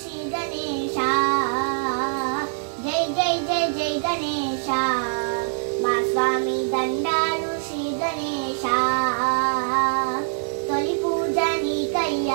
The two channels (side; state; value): left; silent; 63 dB below the other